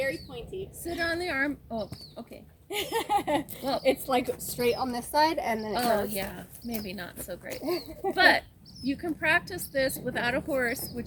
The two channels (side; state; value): both; identical; correlation 1.00